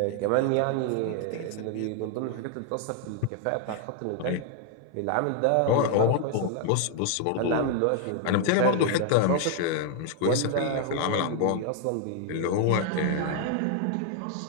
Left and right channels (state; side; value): different; both; correlation 0.00